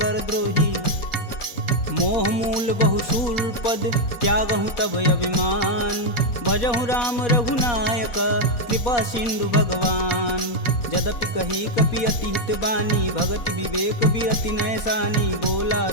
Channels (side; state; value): right; late; 4.2 ms